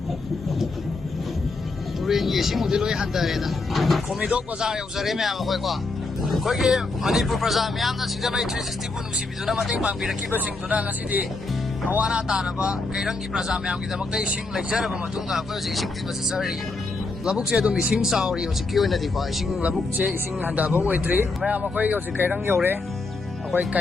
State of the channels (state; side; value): quieter; right; 3.5 dB